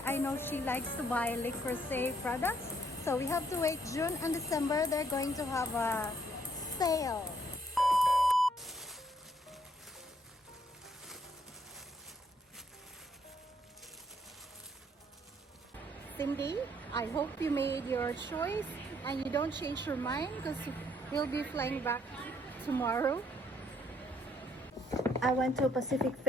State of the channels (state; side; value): normal; both; correlation 0.68